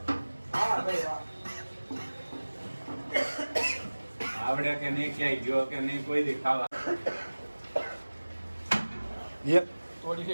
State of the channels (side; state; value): both; inverted; correlation -1.00